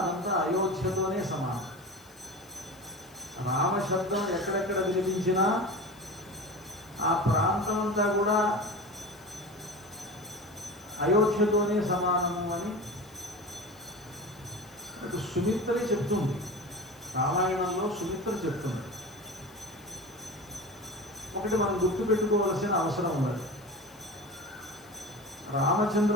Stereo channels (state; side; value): noise; left; hiss, 26 dB below the sound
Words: అదంతా అయోధ్యతోనే సమానం. రామశబ్దం ఎక్కడెక్కడ వినిపించినా ఆ ప్రాంతం అంతా కూడా అయోధ్యతోనే సమానము అని సుమిత్ర చెప్తుంది. రామాయణంలో సుమిత్ర చెప్తుంది. ఒకటి మనం గుర్తుపెట్టుకోవలసిన అవసరం ఉన్నది.